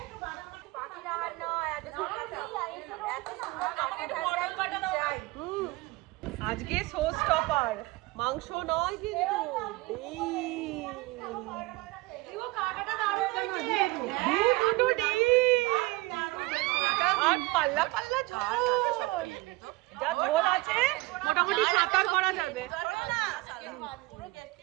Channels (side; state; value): left; quieter; 21.9 dB